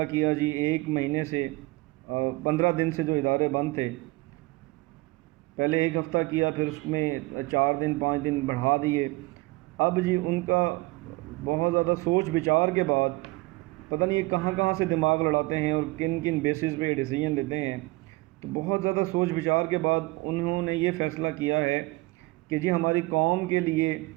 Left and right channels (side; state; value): left; quieter; 22.1 dB